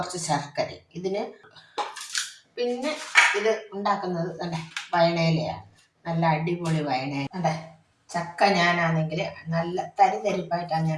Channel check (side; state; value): both; identical; correlation 1.00